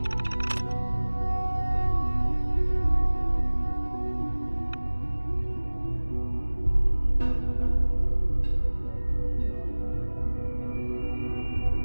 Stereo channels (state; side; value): inverted; both; correlation -1.00